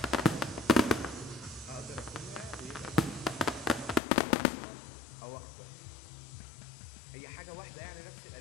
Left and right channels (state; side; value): drops out; right; at 4.0 s